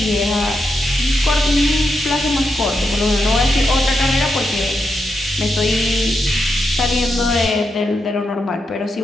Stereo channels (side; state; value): both; normal; correlation 0.84